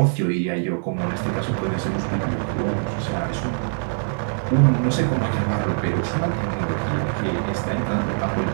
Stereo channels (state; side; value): silent; left; 63 dB below the other